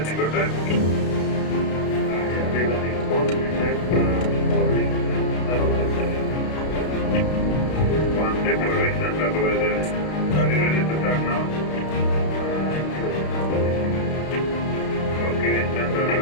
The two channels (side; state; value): right; late; 32 ms